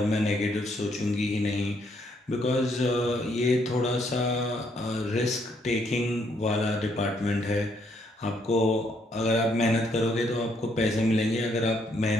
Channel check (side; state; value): both; normal; correlation 0.71